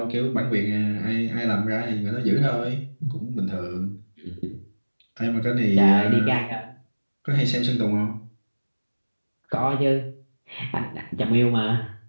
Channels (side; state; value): both; inverted; correlation -1.00